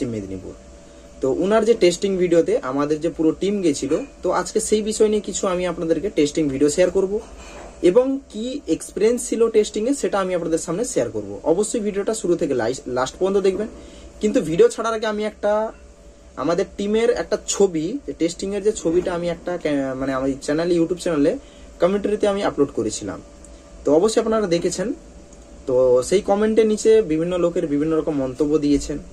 মেদিনীপুর। তো ওনার যে টেস্টিং ভিডিওতে আমাদের যে পুরো টিম গেছিল, তো আজকে সেই বিষয় নিয়ে কিছু আমি আপনাদেরকে টেস্টিং ভিডিও শেয়ার করব এবং কি এক্সপিরিয়েন্স ছিল টেস্টিং এ সেটা আমি আপনাদের সামনে শেয়ার করব। অবশ্যই ভিডিওটা শুরু থেকে লাস্ট পর্যন্ত দেখবেন। কিন্তু ভিডিও ছাড়ার আগে আমি একটা আমাদের টিমের একটা ছবি, টেস্টিং এর যে ছবিটা আমি একটা মানে আমার চ্যানেলে, ইউটিউব চ্যানেলে কমেন্টারিতে আমি আপলোড করেছিলাম। তো অবশ্যই আপনারা দেখেছেন। তো সেই কমেন্টের নিচে বিভিন্ন লোকের বিভিন্ন রকম মন্তব্য দিয়েছেন।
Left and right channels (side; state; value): both; identical; correlation 1.00